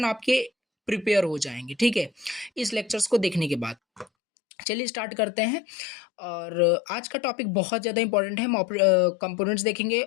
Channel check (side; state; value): right; drops out; at 4.0 s